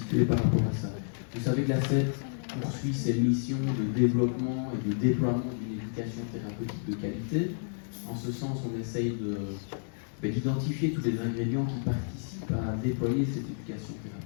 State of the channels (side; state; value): right; silent; 57 dB below the other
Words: par rapport à ça. Vous savez que la CET poursuit ses missions de développement et de déploiement d'une éducation thérapeutique de qualité. En ce sens, on essaye d'identifier tous les ingrédients qui participent à déployer cette éducation